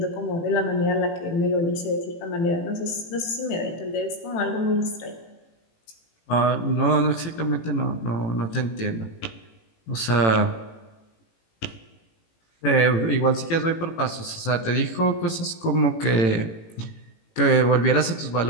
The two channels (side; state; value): right; late; 18 ms